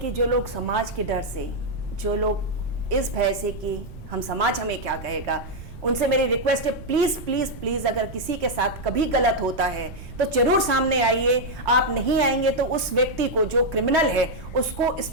जो लोग समाज के डर से, जो लोग इस भय से कि हम समाज हमें क्या कहेगा, उनसे मेरी रिक्वेस्ट है, प्लीज प्लीज प्लीज, अगर किसी के साथ कभी गलत होता है तो जरूर सामने आइए। आप नहीं आएंगे तो उस व्यक्ति को, जो क्रिमिनल है, उसको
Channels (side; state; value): right; noise; rumble, 14 dB below the sound